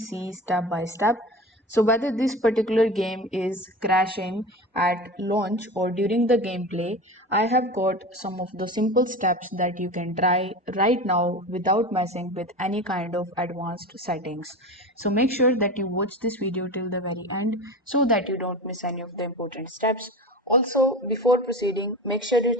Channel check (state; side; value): normal; both; correlation 0.30